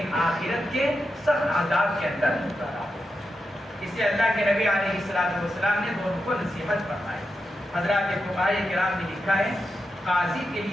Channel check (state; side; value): normal; both; correlation 0.87